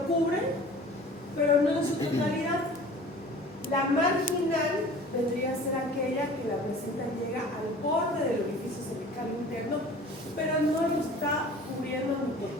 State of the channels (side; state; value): both; normal; correlation 0.44